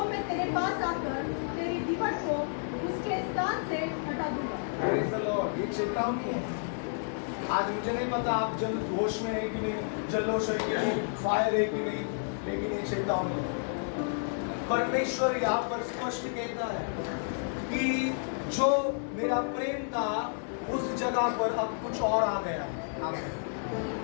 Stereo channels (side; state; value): right; silent; digital silence